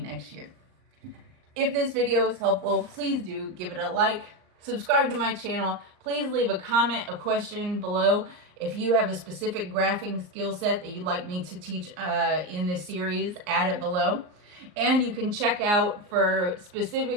year. If this video was helpful, please do give it a like, subscribe to my channel. Please leave a comment, a question below. If you have a specific graphing skill set that you'd like me to teach in this series, add it below. And you can check out for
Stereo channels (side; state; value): left; late; 39 ms